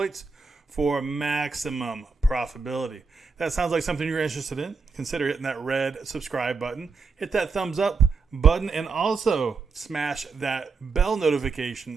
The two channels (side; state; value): left; quieter; 4.6 dB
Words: for maximum profitability. That sounds like something you're interested in. Consider hitting that red subscribe button. Hit that thumbs up button and also smash that bell